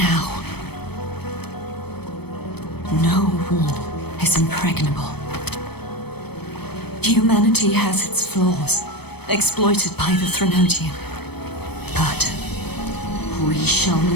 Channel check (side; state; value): right; late; 0.97 ms